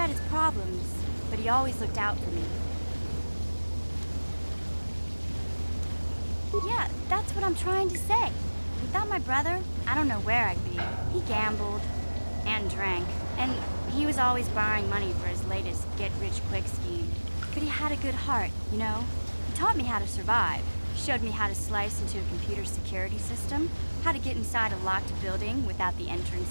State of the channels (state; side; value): inverted; both; correlation -1.00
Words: his problems, but he always looked out for me. Yeah, that's what I'm trying to say. Without my brother, I don't know where I'd be. He gambled and drank, and he was always borrowing money for his latest get-rich-quick scheme. But he had a good heart, you know? He taught me how to survive. Showed me how to slice into a computer security system, how to get inside a locked building without the